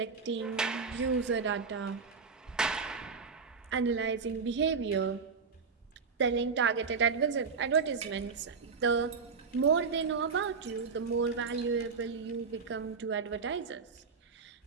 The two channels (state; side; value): quieter; left; 5.2 dB